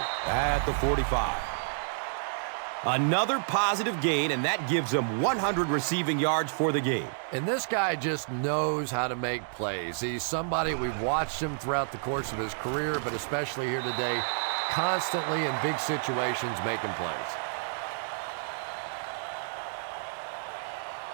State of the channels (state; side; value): silent; left; digital silence